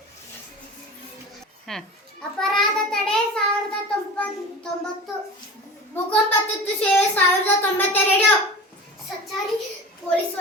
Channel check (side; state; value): both; normal; correlation 0.34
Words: ಅಪರಾಧ ತಡೆ 1090, ಭೂಕಂಪ ತುರ್ತು ಸೇವೆ 1092, ಸಂಚಾರಿ ಪೊಲೀಸ್